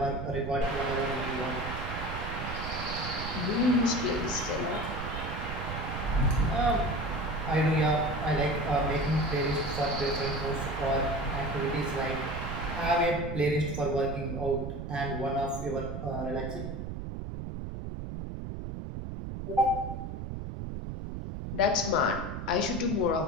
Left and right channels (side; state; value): right; noise; rumble, 6 dB below the sound